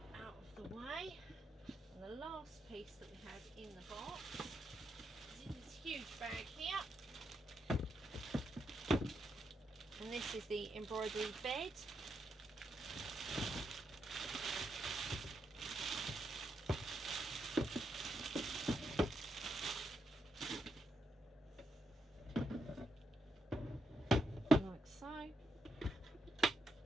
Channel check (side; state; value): both; normal; correlation 0.81